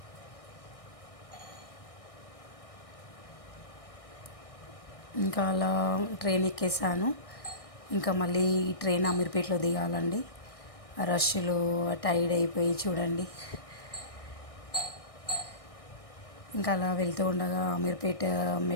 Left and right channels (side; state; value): right; late; 1.6 ms